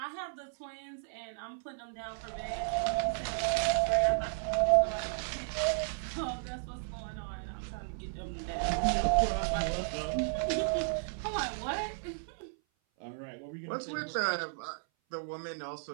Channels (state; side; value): silent; left; 55 dB below the other